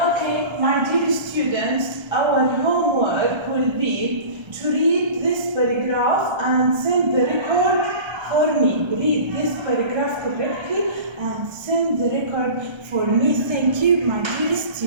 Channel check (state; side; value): late; left; 1.3 ms